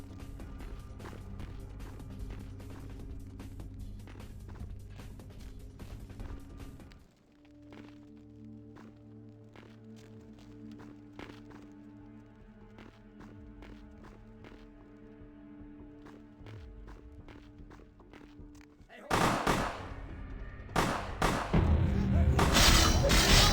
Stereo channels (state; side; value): identical; both; correlation 1.00